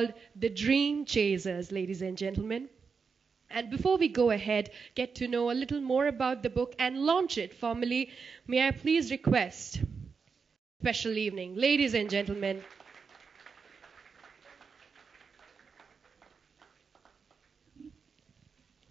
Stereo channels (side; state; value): left; quieter; 5.4 dB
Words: The Dream Chasers, ladies and gentlemen. And before we go ahead, get to know a little more about the book and launch it formally, may I please request special evening. Ladies and gentlemen,